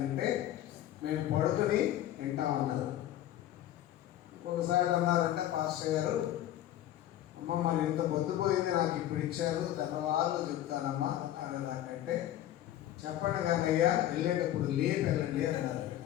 మేము పడుకుని వింటామన్నారు. ఒకసారి అన్నారంటే పాస్టర్ గారు, అమ్మ మరి ఇంత పొద్దుపోయింది నాకు ఇప్పుడు ఇచ్చారు, తెల్లవాళ్ళు చెప్తానమ్మా అనేదాకంటే చెప్పండి కానీ అయ్యా వెళ్ళేటప్పుడు లేపు వెళ్ళండి అన్నారు.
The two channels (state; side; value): quieter; right; 12.9 dB